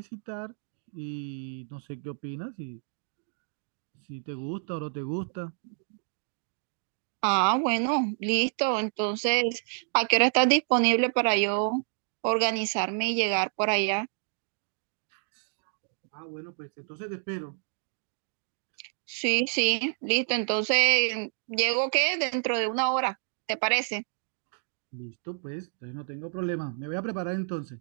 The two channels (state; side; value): silent; left; digital silence